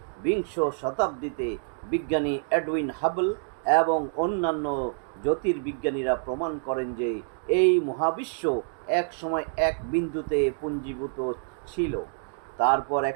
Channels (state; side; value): silent; left; digital silence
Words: বিংশ শতাব্দীতে বিজ্ঞানী এডউইন হাবল এবং অন্যান্য জ্যোতির্বিজ্ঞানীরা প্রমাণ করেন যে এই মহাবিশ্ব এক সময় এক বিন্দুতে পুঞ্জীভূত ছিল। তারপর